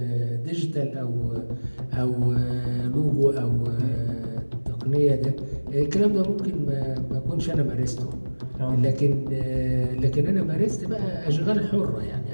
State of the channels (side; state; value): both; inverted; correlation -1.00